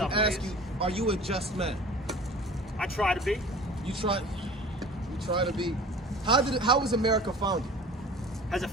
some ask ways. you, are you a just man? I try to be. You try to be. How was America founded? How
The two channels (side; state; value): both; normal; correlation 0.43